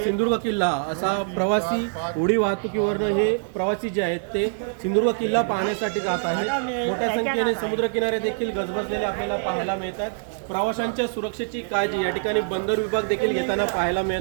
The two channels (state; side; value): silent; left; digital silence